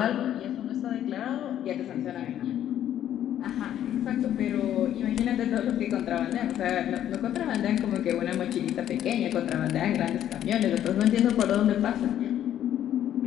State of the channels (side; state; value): right; quieter; 11.1 dB